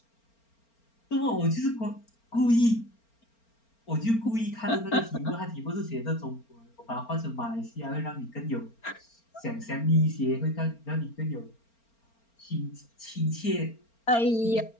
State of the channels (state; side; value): late; right; 4.4 ms